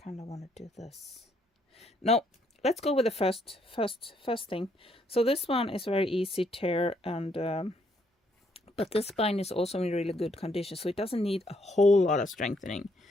kind of want to do this. No, let's go with the first thing. So this one is very easy tear, and but this spine is also in really good condition, so it doesn't need a whole lot of strengthening.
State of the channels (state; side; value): normal; both; correlation 0.71